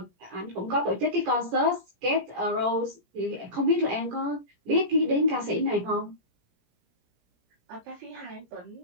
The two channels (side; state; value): left; late; 17 ms